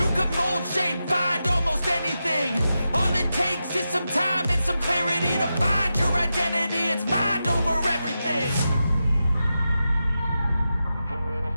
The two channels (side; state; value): both; inverted; correlation -0.90